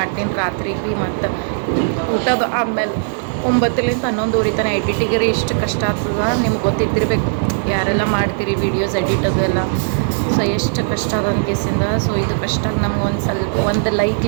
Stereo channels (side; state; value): left; silent; digital silence